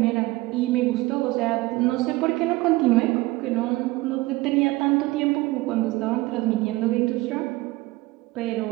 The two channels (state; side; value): quieter; left; 20.2 dB